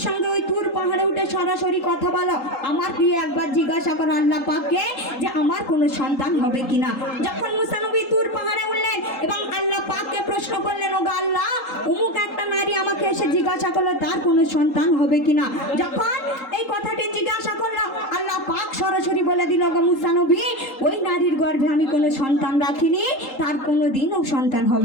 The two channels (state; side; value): late; right; 3.8 ms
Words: সঙ্গে ওই তুর পাহাড়ে উঠে সরাসরি কথা বলো, আমার গিয়ে একবার জিজ্ঞাসা করো আল্লাহ পাককে যে আমার কোনো সন্তান হবে কিনা। যখন মুসা নবী তুর পাহাড়ে উঠলেন এবং আল্লাহ পাককে প্রশ্ন করলেন, ও আল্লাহ, অমুক একটা নারী আমাকে এসে জিজ্ঞাসা করলো তার কোনো সন্তান হবে কিনা। যখন এই কথাটি জিজ্ঞাসা করলো, আল্লাহ পাক সরাসরি বলে দিল, গো মুসা নবী, ওই নারীর গর্ভে আমি কোনো সন্তান রাখিনি, তার কোনো দিনও সন্তান